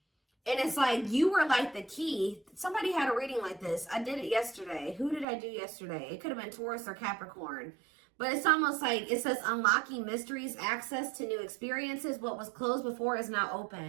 And it's like you were like the key. Somebody had a reading like this. I did it yesterday. Who did I do yesterday? It could have been Taurus or Capricorn. But it's almost like it says unlocking mysteries, access to new experiences. What was closed before is now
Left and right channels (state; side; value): drops out; left; at 5.2 s